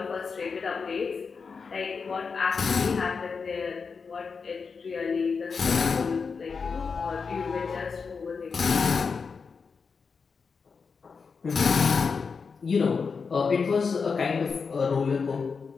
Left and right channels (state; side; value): quieter; right; 5.2 dB